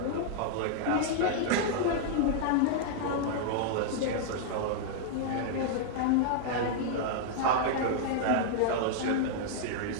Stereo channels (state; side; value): different; both; correlation -0.01